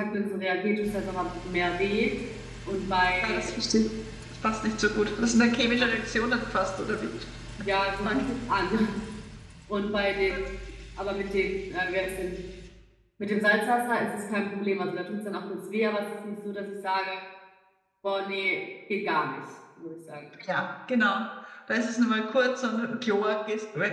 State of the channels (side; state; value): both; identical; correlation 1.00